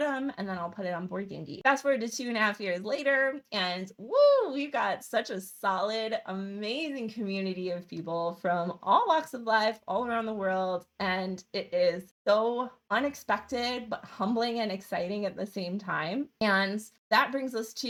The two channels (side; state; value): both; identical; correlation 1.00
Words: and then I'll put it on Board Game Geek. Fast forward to 2.5 years later, and woo, we've got such a solid, amazing community of people from all walks of life, all around the world, and it is so unexpected, but humbling and exciting at the same time. And that brings us